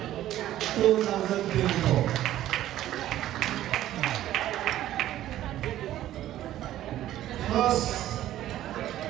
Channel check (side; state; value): left; quieter; 13.3 dB